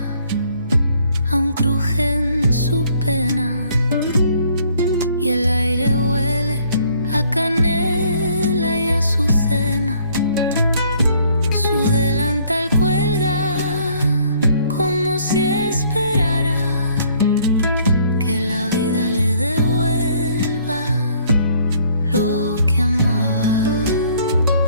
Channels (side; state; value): both; inverted; correlation -0.62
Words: aún cruje en su pena y el aire huele a canela y azucena. Su delantal cuelga como si esperara que la vida le devuelva lo que amaba.